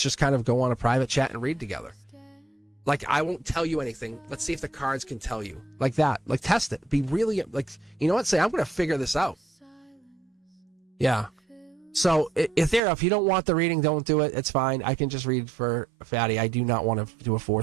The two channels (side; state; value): left; drops out; at 12.8 s